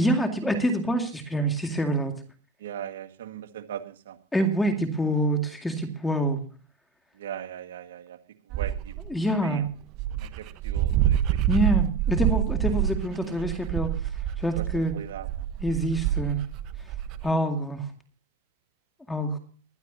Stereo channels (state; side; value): quieter; left; 3.5 dB